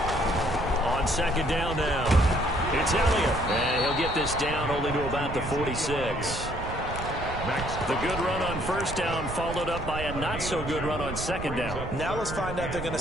On 2nd down now, it's Elliott. And he'll get this down only to about the 46. The good run on 1st down followed up by a not-so-good run on 2nd down. Now let's find out if they're going to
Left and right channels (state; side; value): noise; right; rumble, 7 dB below the sound